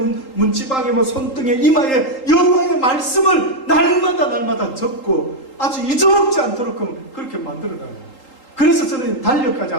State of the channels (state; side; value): late; right; 3.8 ms